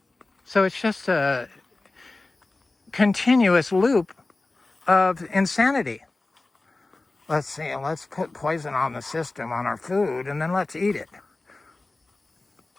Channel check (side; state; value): right; quieter; 3.2 dB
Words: So it's just a continuous loop of insanity. Let's see, let's put poison on the system, on our food, and then let's eat it.